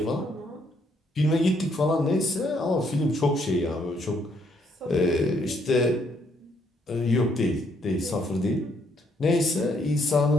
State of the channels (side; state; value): both; normal; correlation 0.71